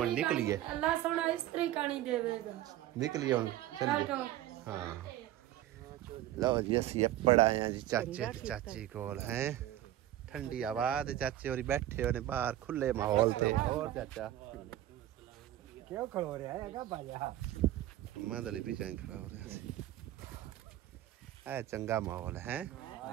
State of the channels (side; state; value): left; quieter; 13.6 dB